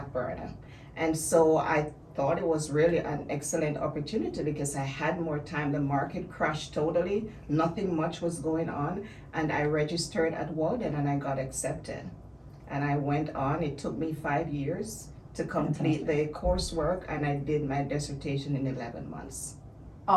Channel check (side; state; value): both; identical; correlation 1.00